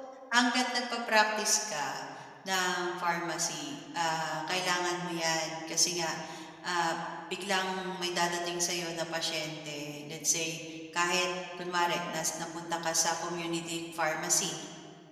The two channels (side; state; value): both; identical; correlation 1.00